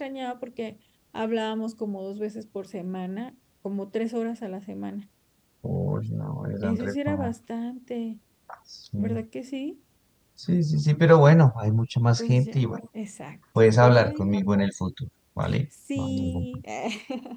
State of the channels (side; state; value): both; identical; correlation 1.00